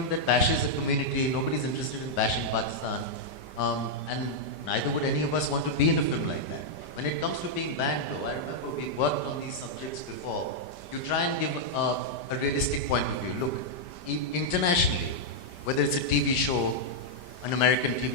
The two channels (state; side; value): late; right; 5.1 ms